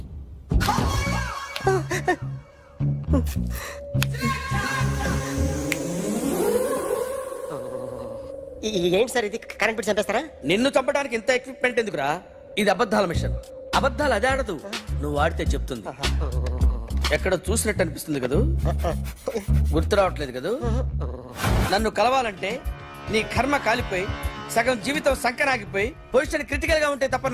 ఏంటి సార్ ఇది? కరెంట్ బిల్ చంపేస్తారా? నిన్ను చంపడానికి ఇంత ఎక్విప్మెంట్ ఎందుకురా? ఇది అబద్ధాల మిషన్. అబద్ధాలు అదే ఆడదు, నువ్వు ఆడితే చెప్తుంది. ఎక్కడ చూసినట్టు అనిపిస్తుంది కదూ, గుర్తు రావట్లేదు కదూ. నన్ను కలవాలంటే నీ కర్మ కాలిపోయి సగం జీవితం సంకనాగిపోయి పొజిషన్ క్రిటికల్ గా ఉంటే తప్ప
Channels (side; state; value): both; identical; correlation 1.00